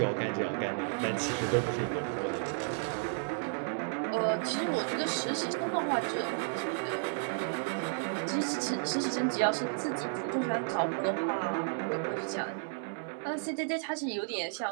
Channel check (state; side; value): silent; left; 56 dB below the other